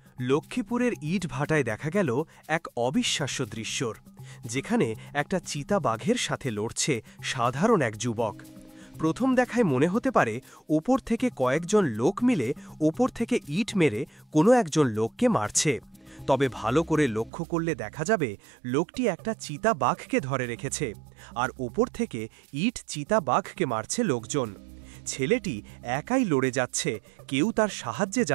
লক্ষ্মীপুরের ইটভাটায় দেখা গেল এক অবিশ্বাস্য দৃশ্যর, যেখানে একটা চিতাবাঘের সাথে লড়ছে সাধারণ এক যুবক। প্রথম দেখায় মনে হতে পারে ওপর থেকে কয়েকজন লোক মিলে ওপর থেকে ইট মেরে কোনো একজন লোককে মারছে, তবে ভালো করে লক্ষ্য করলে দেখা যাবে লোকটি একটা চিতাবাঘকে ধরে রেখেছে, আর ওপর থেকে ইট চিতাবাঘকে মারছে লোকজন। ছেলেটি একাই লড়ে যাচ্ছে, কেউ তার সাহায্যে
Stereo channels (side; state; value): left; drops out; at 17.3 s